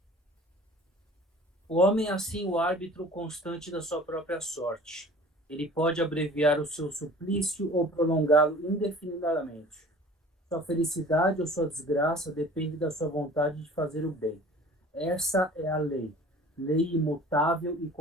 O homem é assim o árbitro constante da sua própria sorte. Ele pode abreviar o seu suplício ou prolongá-lo indefinidamente. Sua felicidade ou sua desgraça depende da sua vontade de fazer o bem. Essa é a lei, lei imutável e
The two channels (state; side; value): normal; both; correlation 0.45